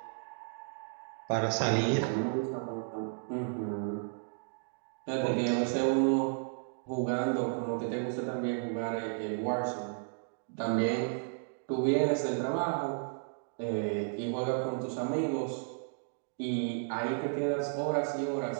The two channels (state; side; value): silent; left; digital silence